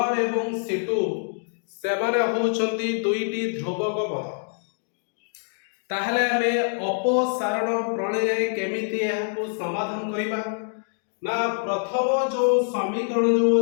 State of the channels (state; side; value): silent; right; digital silence